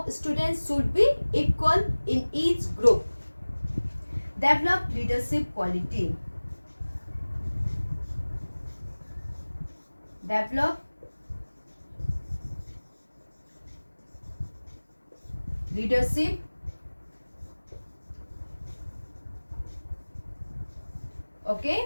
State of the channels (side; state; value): both; inverted; correlation -1.00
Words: students should be equal in each group. Develop leadership quality. Develop leadership